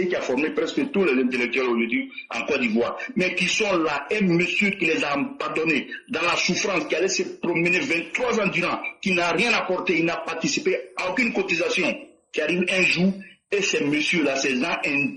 qui a formé presque tous les intellectuels aujourd'hui en Côte d'Ivoire, mais qui sont là, un monsieur qui les a abandonnés dans la souffrance, qui allait se promener 23 ans durant, qui n'a rien apporté, il n'a participé à aucune cotisation, qui arrive un jour, et ces messieurs-là, ces gens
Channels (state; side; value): identical; both; correlation 1.00